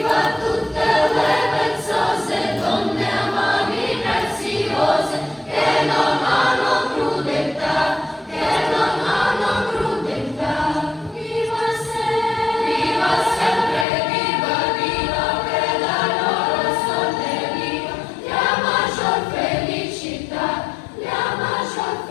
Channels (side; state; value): right; drops out; at 13.9 s